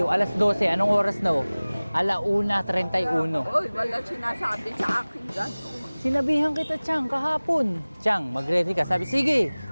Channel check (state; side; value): inverted; both; correlation -1.00